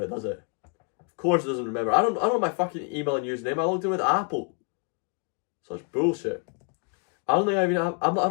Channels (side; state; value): right; quieter; 35.2 dB